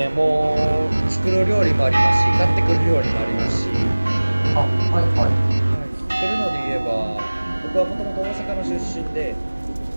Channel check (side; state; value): both; inverted; correlation -1.00